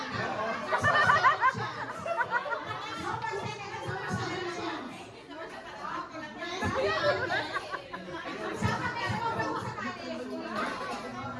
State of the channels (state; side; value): identical; both; correlation 1.00